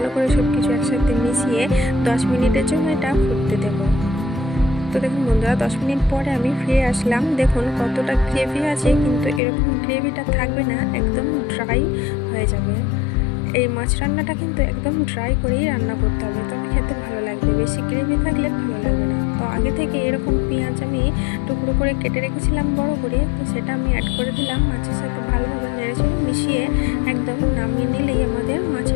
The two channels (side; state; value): right; drops out; at 9.4 s